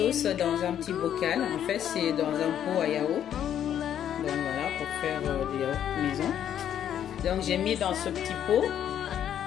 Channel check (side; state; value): right; quieter; 10.0 dB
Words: dans un petit bocal. En fait, c'est dans un pot à yaourt. Donc voilà, pour faire des yaourts maison. Donc j'ai mis dans ce petit pot.